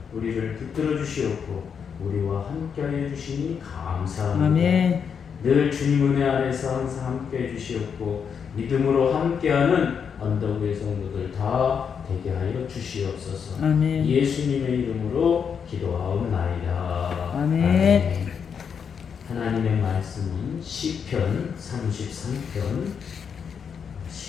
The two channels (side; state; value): right; quieter; 6.9 dB